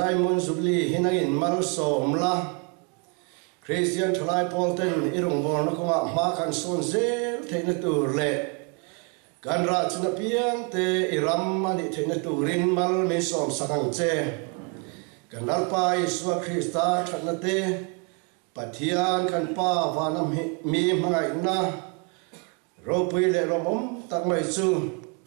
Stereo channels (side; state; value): left; quieter; 36.0 dB